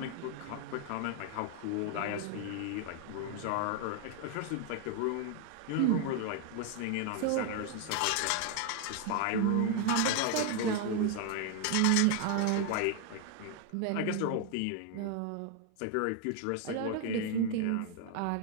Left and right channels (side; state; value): both; different; correlation 0.00